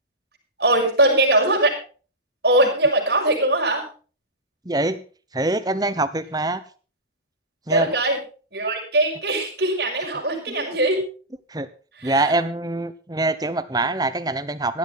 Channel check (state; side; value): normal; both; correlation -0.13